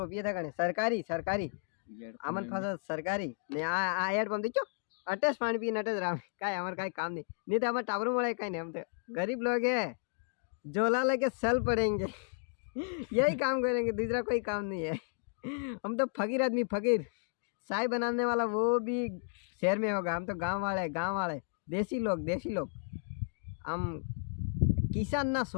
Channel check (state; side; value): silent; right; digital silence